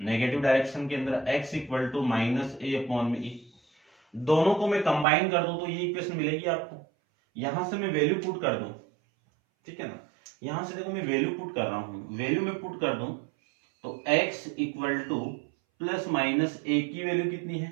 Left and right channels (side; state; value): left; drops out; at 5.1 s